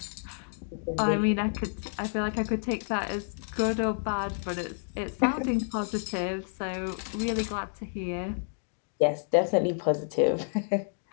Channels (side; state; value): right; silent; digital silence